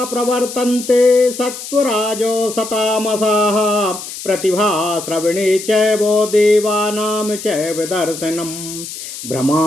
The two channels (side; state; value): left; noise; hiss, 10 dB below the sound